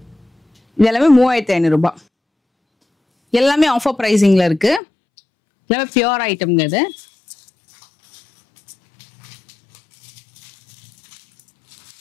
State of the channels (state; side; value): drops out; right; at 4.8 s